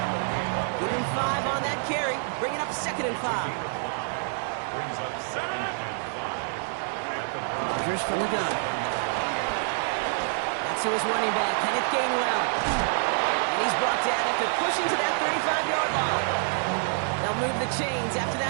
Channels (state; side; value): silent; left; 60 dB below the other